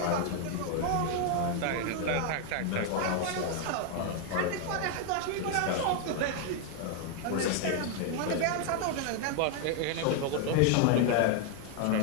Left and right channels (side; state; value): both; different; correlation 0.00